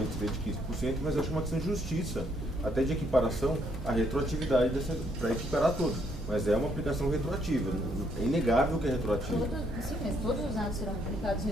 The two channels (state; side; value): normal; both; correlation 0.71